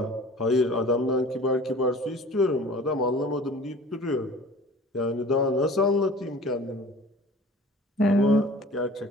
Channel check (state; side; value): normal; both; correlation 0.44